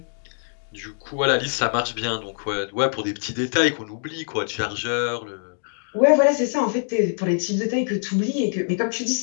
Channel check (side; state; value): right; silent; digital silence